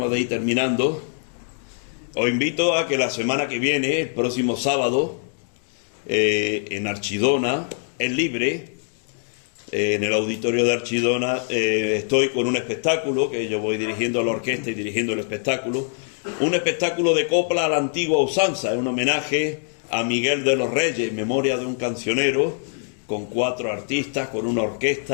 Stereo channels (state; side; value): silent; right; digital silence